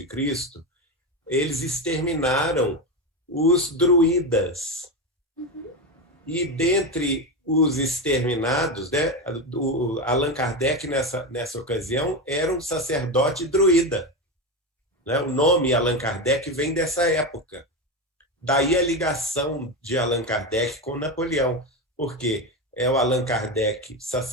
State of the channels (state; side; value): normal; both; correlation 0.15